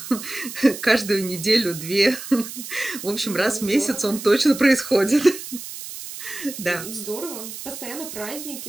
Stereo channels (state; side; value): noise; right; hiss, 11 dB below the sound